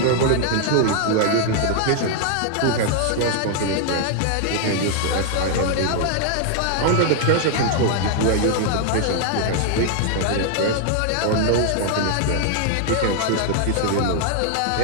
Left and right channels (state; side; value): different; both; correlation 0.00